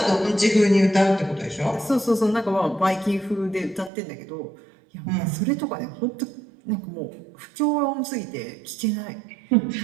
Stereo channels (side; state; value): left; drops out; at 3.9 s